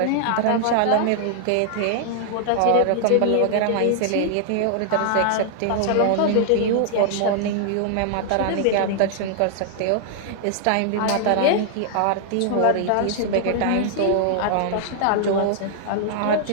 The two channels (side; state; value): both; different; correlation -0.01